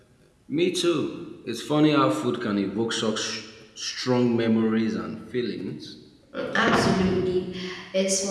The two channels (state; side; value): identical; both; correlation 1.00